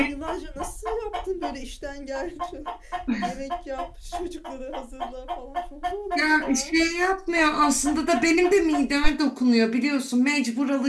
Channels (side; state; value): both; identical; correlation 1.00